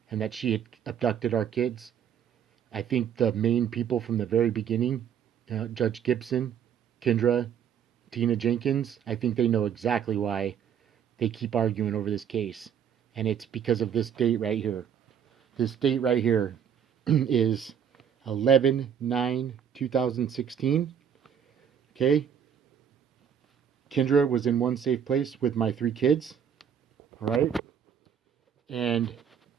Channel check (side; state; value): left; quieter; 8.4 dB